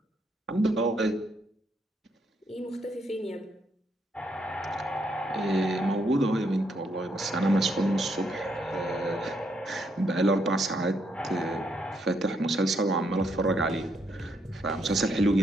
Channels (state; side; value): normal; both; correlation 0.75